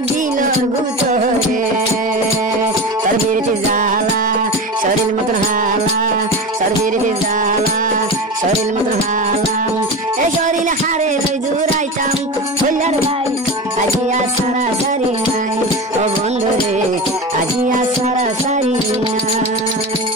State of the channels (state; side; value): normal; both; correlation 0.26